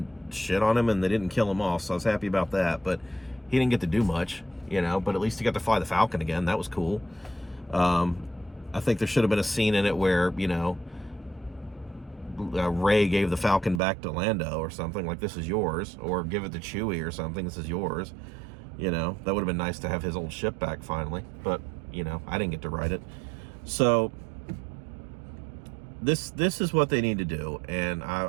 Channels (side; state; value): left; drops out; at 13.8 s